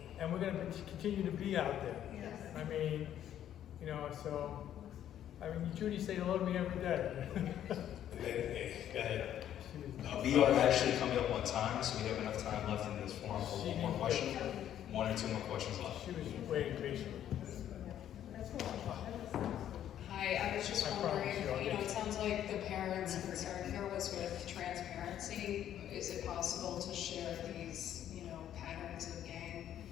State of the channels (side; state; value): right; quieter; 10.8 dB